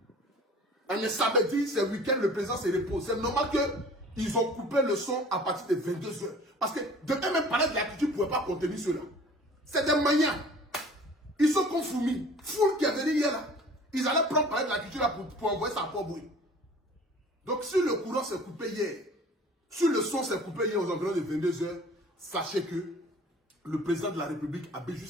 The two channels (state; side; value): normal; both; correlation 0.47